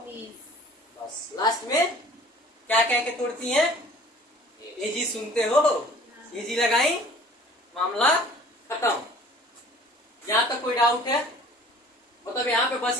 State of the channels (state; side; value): normal; both; correlation 0.49